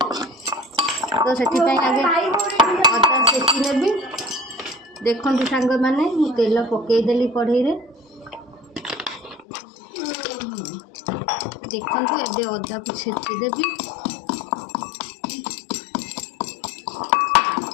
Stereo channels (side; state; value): right; drops out; at 9.5 s